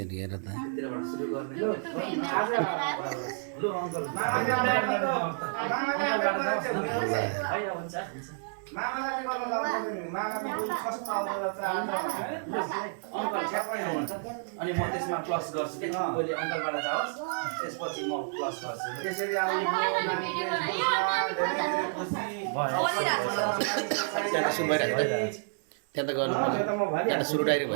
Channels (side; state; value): left; silent; 58 dB below the other